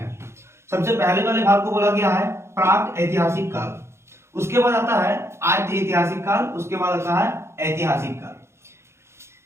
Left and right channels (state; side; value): late; left; 0.13 ms